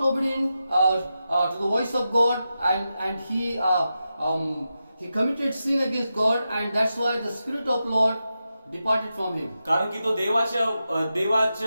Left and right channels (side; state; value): both; inverted; correlation -0.89